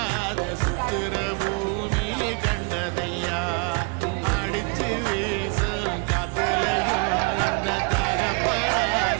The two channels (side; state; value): left; quieter; 33.4 dB